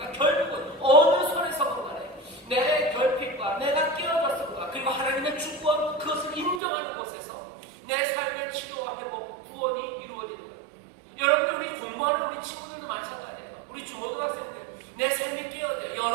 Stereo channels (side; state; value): left; drops out; at 6.6 s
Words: 결국은 어느 손에서건 간에 내 결핍과 내가 깨어졌음과 그리고 하나님의 주권 그것을 인정하는 곳에서 내 삶의 치료와 회복 구원이 이루어지는 거예요. 여러분들 우리 공부하는 우리 친구들도 마찬가지예요. 우리 중고등학생들 내 삶이 깨어져요.